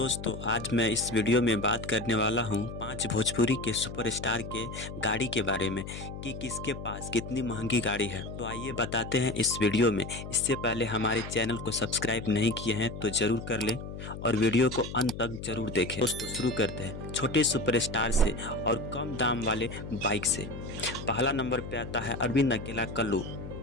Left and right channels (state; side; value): noise; left; hum, 9 dB below the sound